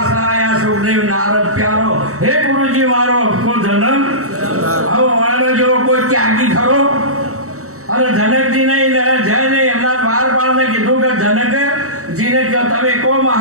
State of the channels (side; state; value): left; late; 0.64 ms